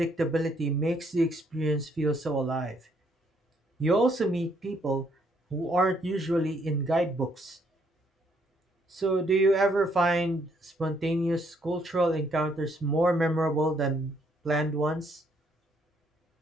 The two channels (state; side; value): normal; both; correlation 0.70